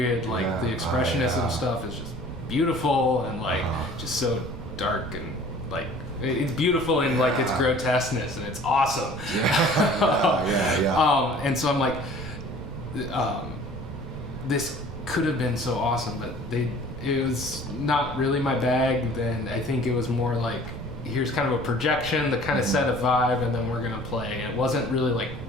Like the expressionism stuff is just beautiful, and like just so dark, and like it's beautiful in like its grotesqueness, and it's awesome. And so I'm like, this could have been so awesome, but it was not really my bag. Then I think it was more like, here's kind of a projection that kind of set a vibe, and then we're gonna play. And it wasn't really like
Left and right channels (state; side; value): noise; right; rumble, 11 dB below the sound